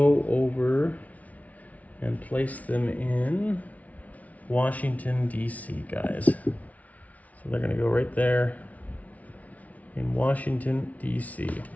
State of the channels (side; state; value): right; late; 0.070 ms